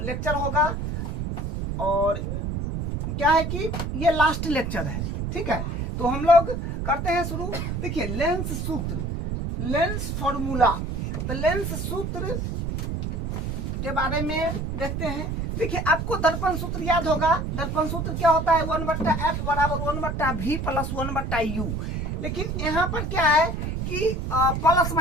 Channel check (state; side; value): noise; right; rumble, 3 dB below the sound